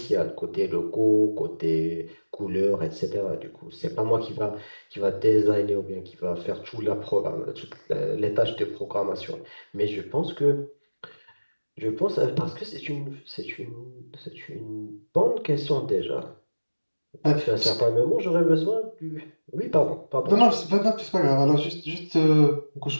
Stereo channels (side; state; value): both; inverted; correlation -1.00